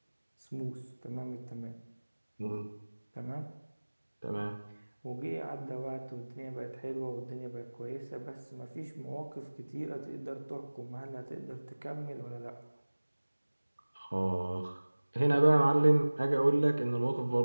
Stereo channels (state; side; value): inverted; both; correlation -1.00